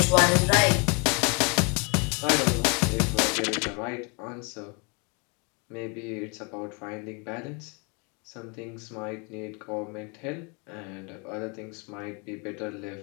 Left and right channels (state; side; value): quieter; right; 32.6 dB